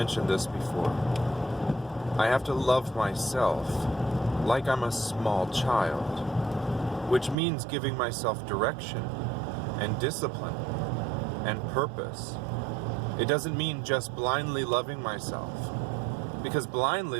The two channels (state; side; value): drops out; left; at 7.4 s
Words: this before, I have to love myself like I'm a small child, which means giving myself direction and discipline and purpose. It doesn't mean just blindly loving myself, because blindly